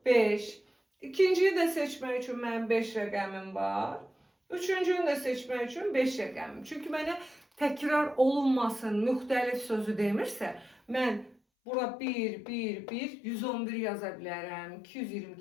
5. İkinciyi də seçmək üçün mənim 5 rəqəmim var. Üçüncünü də seçmək üçün 5 rəqəmim. Çünki mənə təkrar olunmasın, müxtəlif sözü demirsə, mən bura 1, 1, 1, 111 yaza bilərəm,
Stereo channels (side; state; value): right; drops out; at 11.4 s